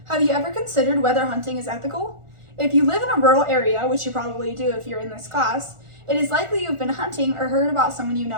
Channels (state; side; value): late; left; 1.4 ms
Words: Have you ever considered whether hunting is ethical? If you live in a rural area, which you probably do if you're in this class, it is likely you've been hunting or heard about someone you